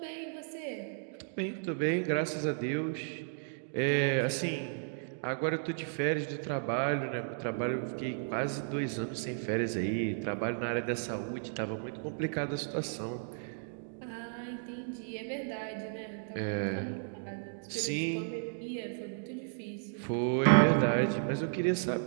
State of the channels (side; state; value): left; silent; digital silence